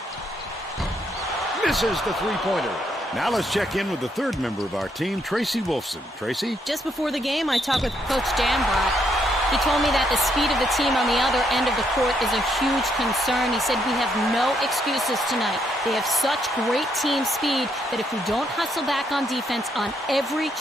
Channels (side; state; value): both; normal; correlation 0.74